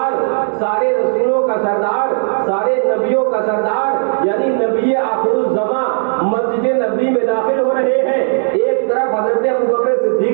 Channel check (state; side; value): silent; left; digital silence